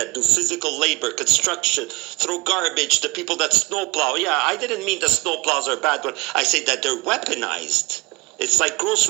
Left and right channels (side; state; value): left; quieter; 24.8 dB